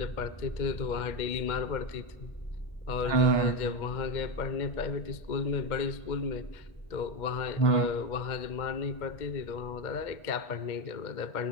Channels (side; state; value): right; late; 2.1 ms